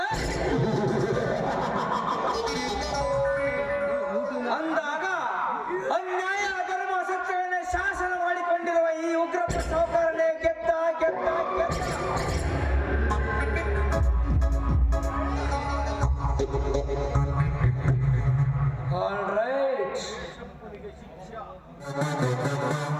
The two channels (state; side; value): identical; both; correlation 1.00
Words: ಅಂದಾಗ ಅನ್ಯಾಯ ಅಧರ್ಮ ಸತ್ಯವನ್ನೇ ಶಾಸನ ಮಾಡಿಕೊಂಡಿರುವ ಈ ಉಗ್ರಪ್ಪ ಸಾಹುಕಾರನೇ ಗೆದ್ದ ಗೆದ್ದ ಗೆದ್ದ. ಆಲ್ ರೈಟ್,